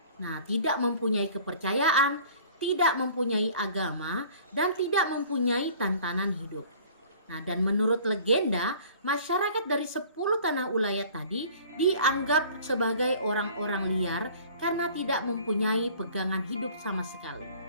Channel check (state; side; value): inverted; both; correlation -0.49